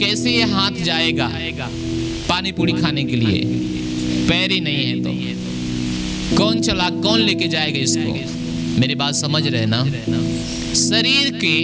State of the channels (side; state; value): both; identical; correlation 1.00